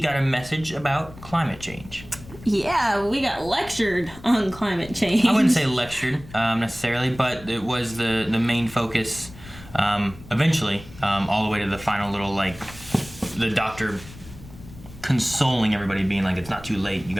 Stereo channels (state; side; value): noise; left; rumble, 18 dB below the sound